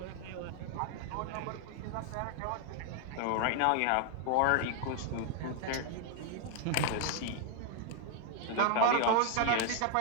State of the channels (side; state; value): both; different; correlation 0.00